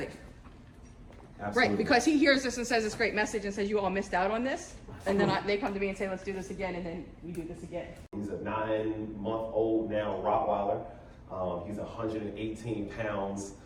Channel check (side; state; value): both; identical; correlation 1.00